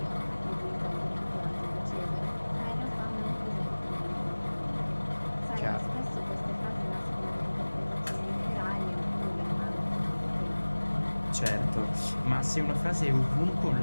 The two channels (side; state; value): both; inverted; correlation -1.00